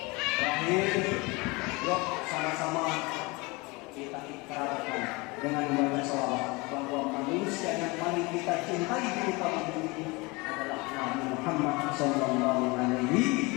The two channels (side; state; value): right; quieter; 25.6 dB